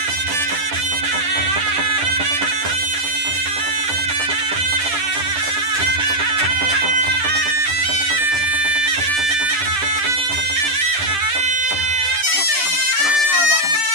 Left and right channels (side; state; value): left; late; 10 ms